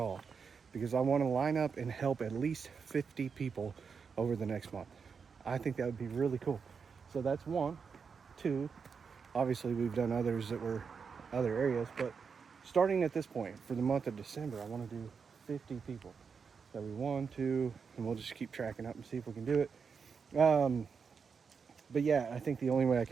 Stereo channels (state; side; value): quieter; left; 5.8 dB